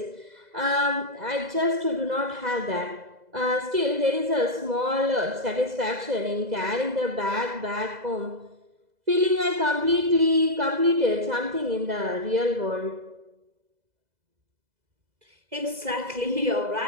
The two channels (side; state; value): left; late; 2.0 ms